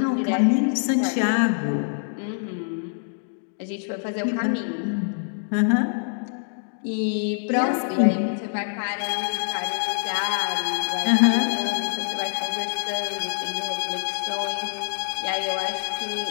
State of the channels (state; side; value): silent; right; digital silence